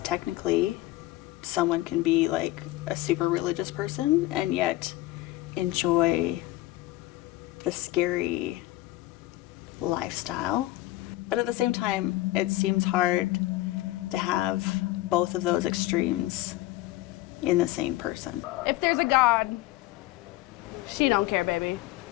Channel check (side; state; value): right; quieter; 17.4 dB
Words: technically someone can be like a super religious person and yet enjoy the scary lifestyle. But at the same time, it seems hard to have both of those extremes in the same person. If there's a God, she don't care, baby.